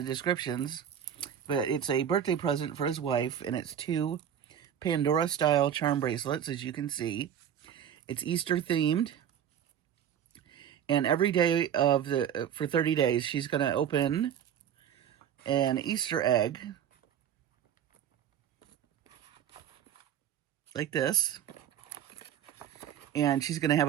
descriptions. But it's a birthday present for his wife, and it's 2 Pandora-style charm bracelets, as you can see. It's Easter themed, and every day of for 30 days, she's going to open an Easter egg, like this, and she's going to have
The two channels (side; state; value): left; quieter; 9.3 dB